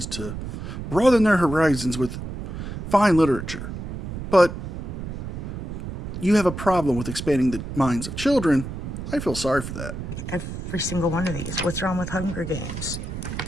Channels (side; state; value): right; noise; rumble, 7 dB below the sound